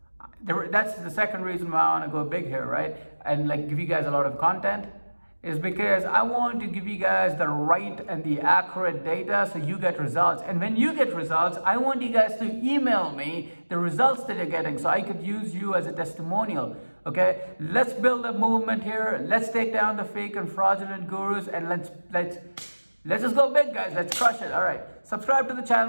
that's the second reason why I want to go big here, right? And like give you guys a lot of content, is because I want to give you guys the right and the accurate data so you get results. And when you get results, I want you guys to email me the results that you're getting so I could use you as a testimonial. Okay, let's build a movement here. Let's take down the fake and fraudulent gurus, and let's just go big, guys. Let's crush it. All right, subscribe to the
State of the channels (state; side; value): inverted; both; correlation -1.00